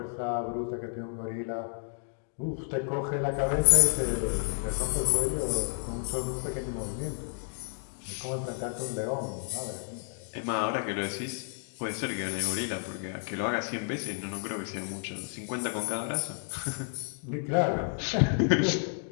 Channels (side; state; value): right; silent; 57 dB below the other